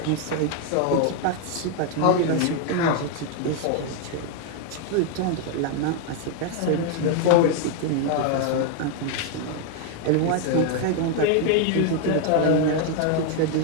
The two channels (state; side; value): different; both; correlation 0.01